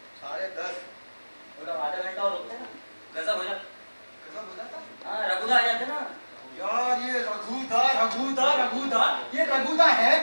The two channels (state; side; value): inverted; both; correlation -1.00